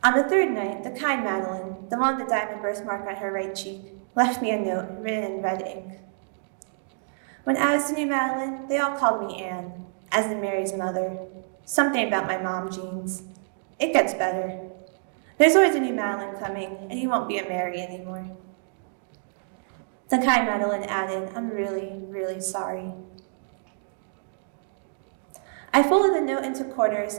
On the third night, the kind Madeline, the one with the diamond birthmark on her right cheek, left me a note written in red ink. When I was the new Madeline, they all called me Anne, as in Mary's mother. Something about my mom genes. It gets better. There's always a new Madeline coming, and you won't be a Mary anymore. The kind Madeline added, "I'm really, really sorry." I folded the note into quarters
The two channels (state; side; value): silent; left; digital silence